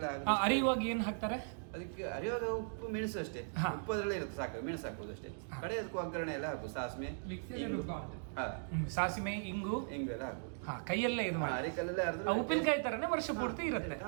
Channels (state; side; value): silent; left; digital silence